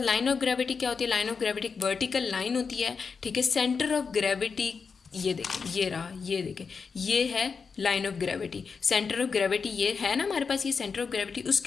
लाइन ऑफ ग्रेविटी क्या होती है? लाइन ऑफ ग्रेविटी एक वर्टिकल लाइन होती है, ठीक है। सेंटर ऑफ ग्रेविटी ये देखें, ये रहा, ये देखें, ये है line of gravity. Centre of gravity ये है ना हमारे पास, ये सेंटर ऑफ ग्रेविटी,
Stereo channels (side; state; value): right; quieter; 5.4 dB